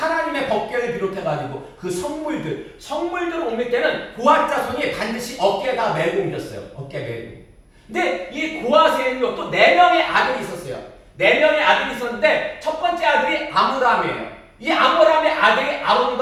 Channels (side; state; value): both; identical; correlation 1.00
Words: 법궤를 비롯해가지고 그 성물들을 옮길 때는 고앗 자손이 반드시 어깨에다 메고 옮겼어요. 어깨 메고. 근데 이 고앗에는요 또 4명의 아들이 있었어요. 4명의 아들이 있었는데 첫 번째 아들이 아므람이에요. 이 아므람의 아들이